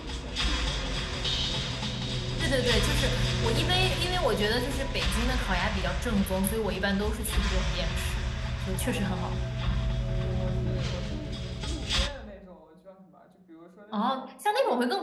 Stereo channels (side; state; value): both; identical; correlation 1.00